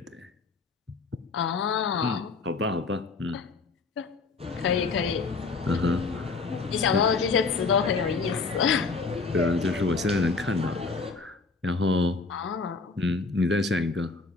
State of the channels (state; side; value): quieter; right; 4.2 dB